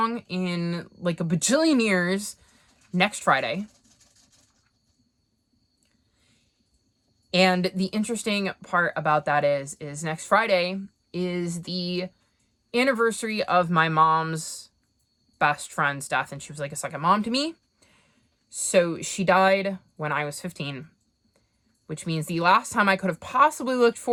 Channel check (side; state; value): both; identical; correlation 1.00